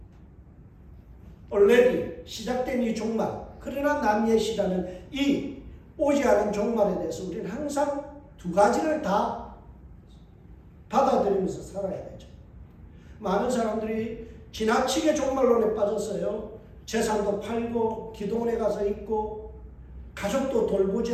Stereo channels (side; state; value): both; identical; correlation 1.00